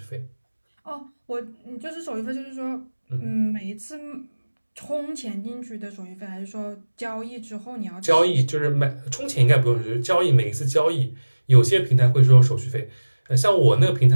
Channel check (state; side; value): inverted; both; correlation -1.00